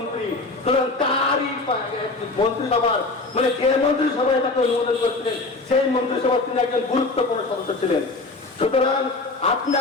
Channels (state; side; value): quieter; right; 3.4 dB